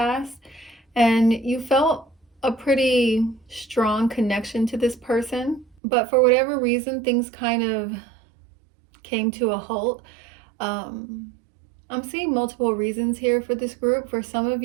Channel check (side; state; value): left; drops out; at 5.8 s